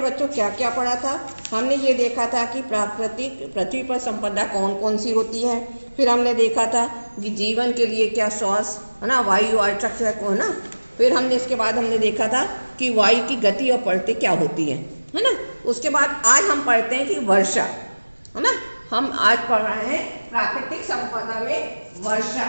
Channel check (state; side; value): inverted; both; correlation -1.00